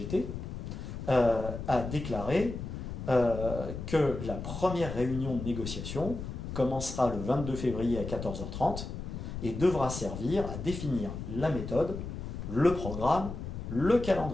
a déclaré que la première réunion de négociation commencera le 22 février à 14h30 et devra servir à définir la méthode, le programme, le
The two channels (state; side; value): noise; left; rumble, 7 dB below the sound